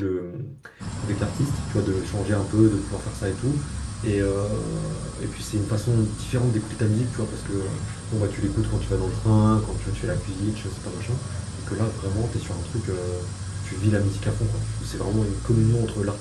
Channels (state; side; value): identical; both; correlation 1.00